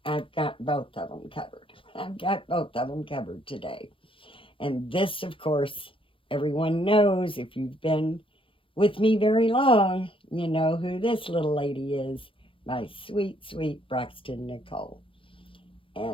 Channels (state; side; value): late; right; 0.25 ms